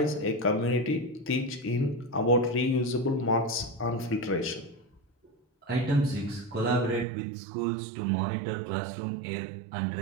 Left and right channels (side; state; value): left; drops out; at 7.1 s